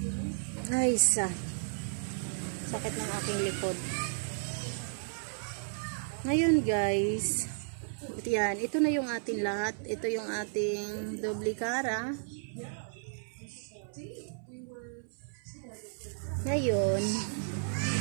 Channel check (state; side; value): silent; left; 55 dB below the other